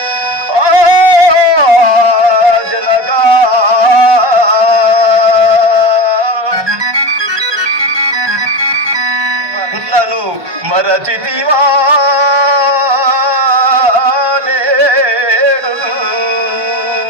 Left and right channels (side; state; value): left; late; 1.2 ms